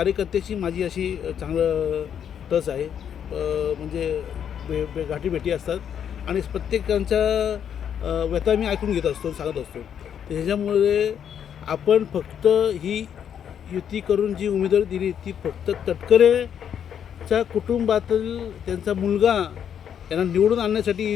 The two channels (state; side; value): quieter; right; 8.7 dB